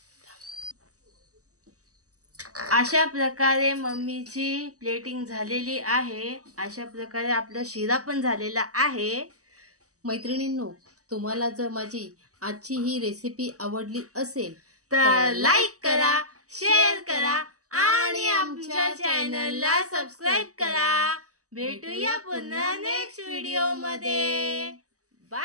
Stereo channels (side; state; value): left; late; 0.66 ms